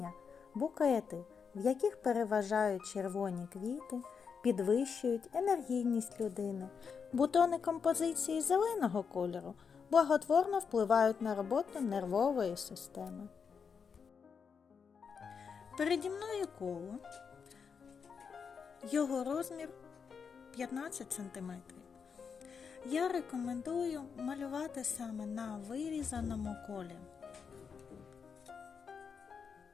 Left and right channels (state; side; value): quieter; right; 6.1 dB